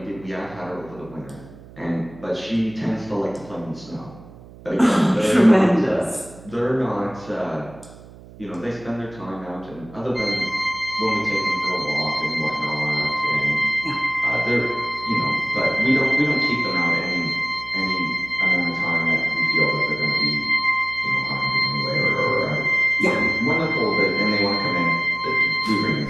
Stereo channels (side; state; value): right; noise; hum, 19 dB below the sound